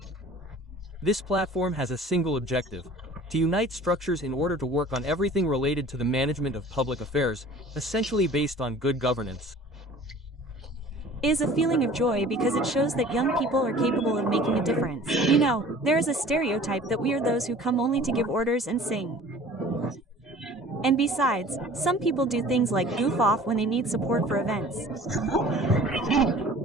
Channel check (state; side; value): normal; both; correlation 0.47